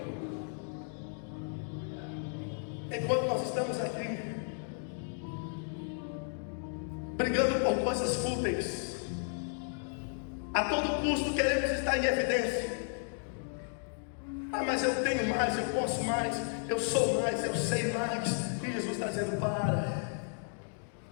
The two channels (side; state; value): right; silent; 55 dB below the other